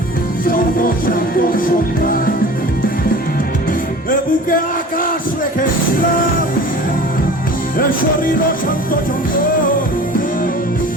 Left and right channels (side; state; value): both; normal; correlation 0.40